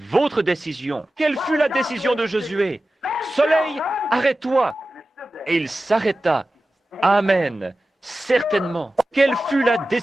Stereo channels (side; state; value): both; normal; correlation 0.94